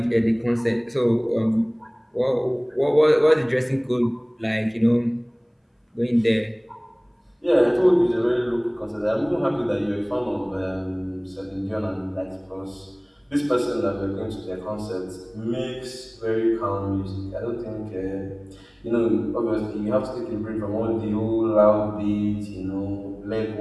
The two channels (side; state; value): both; identical; correlation 1.00